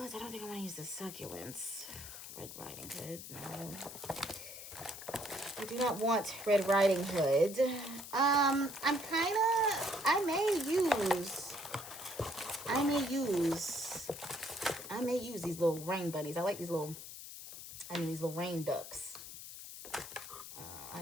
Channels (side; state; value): left; noise; hiss, 11 dB below the sound